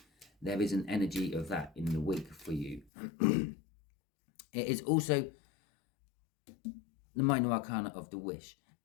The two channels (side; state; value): right; drops out; at 2.9 s